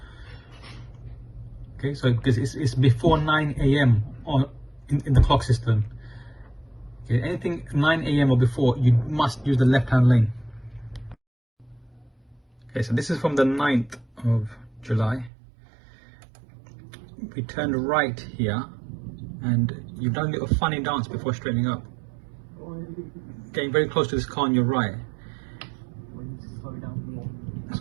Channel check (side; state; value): left; drops out; at 15.3 s